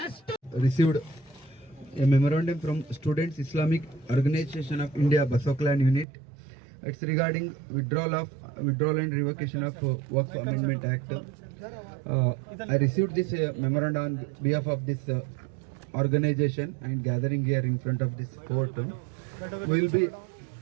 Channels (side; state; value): left; drops out; at 6.1 s